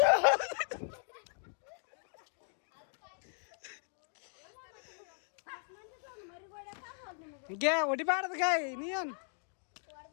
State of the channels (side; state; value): right; silent; 53 dB below the other